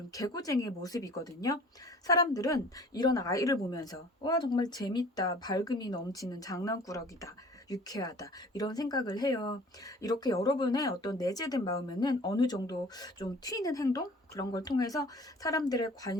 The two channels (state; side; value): normal; both; correlation 0.48